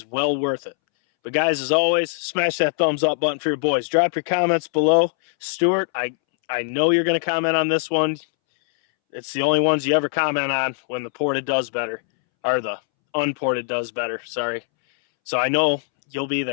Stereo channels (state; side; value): silent; right; 64 dB below the other